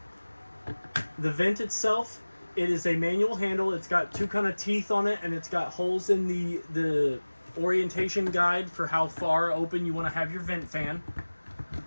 The vent itself, it is a manual handle. It's got two kind of teeth on it, and it's got holes in the orientation guide for how far open you want to have your vent fan.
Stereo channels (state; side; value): inverted; both; correlation -1.00